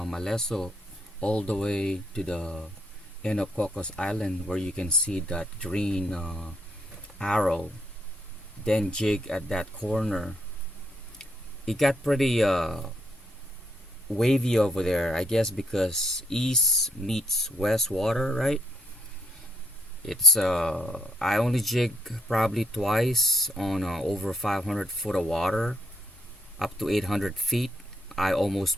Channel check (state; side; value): normal; both; correlation 0.74